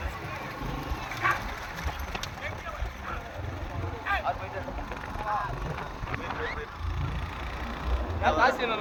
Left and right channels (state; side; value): identical; both; correlation 1.00